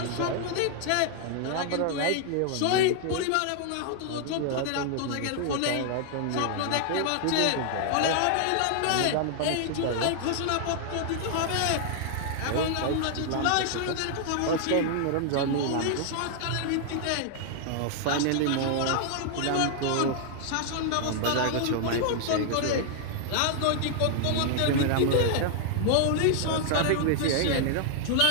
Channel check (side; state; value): both; different; correlation 0.00